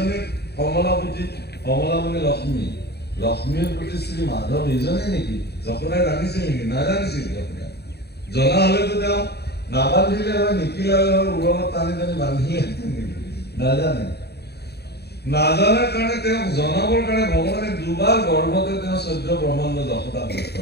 কমলাপতি কমলা মানে লক্ষ্মী লক্ষ্মীৰ প্ৰতি শ্ৰী মাধৱ এইজনে নেকি যশোদাই জানিছিল নেকি নাজানিছিল যশোদাই জনা হলেতো তেওঁ নাবান্ধিলে হয় নিকিলালে হয় উৰণত টানি টানি বান্ধিলেহেঁতেন নেকি নাজানে নাজানাৰ কাৰণে তেওঁক জনাবৰ কাৰণে ভগৱানে দুবাৰ গৰ্ভতে তেওঁ 14 ব্ৰহ্মাণ্ড যশোদাক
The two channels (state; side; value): late; right; 0.48 ms